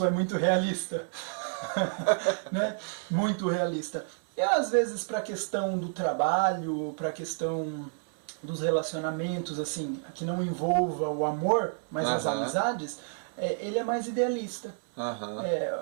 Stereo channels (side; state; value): left; silent; 58 dB below the other